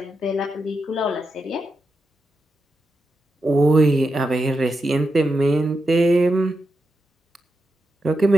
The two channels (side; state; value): both; normal; correlation 0.87